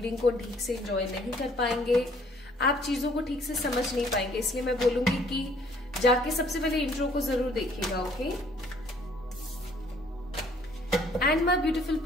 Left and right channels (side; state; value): both; normal; correlation 0.60